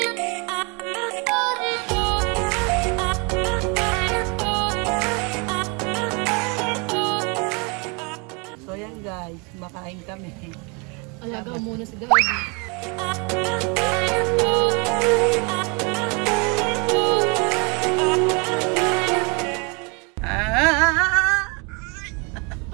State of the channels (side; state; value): left; quieter; 31.6 dB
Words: So yan guys, makain kami. Alaga muna si Daddy. Ah!